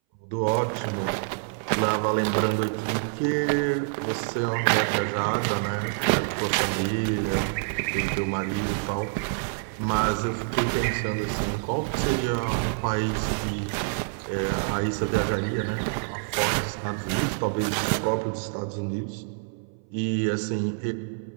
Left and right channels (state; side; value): silent; left; 60 dB below the other